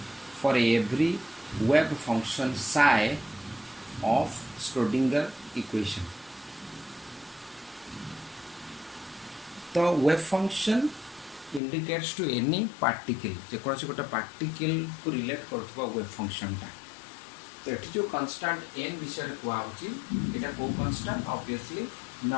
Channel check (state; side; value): drops out; right; at 11.6 s